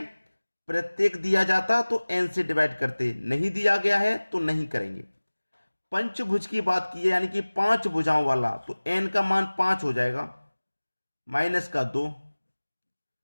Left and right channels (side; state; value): both; inverted; correlation -1.00